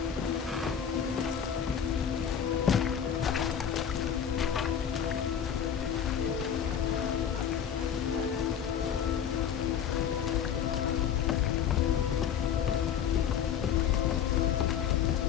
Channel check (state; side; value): quieter; right; 8.6 dB